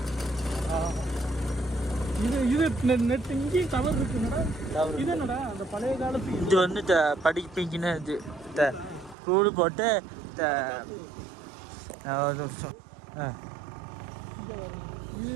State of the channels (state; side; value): drops out; left; at 9.2 s